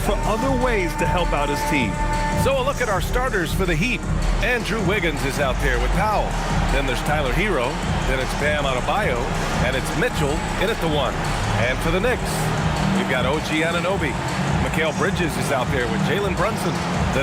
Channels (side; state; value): both; identical; correlation 1.00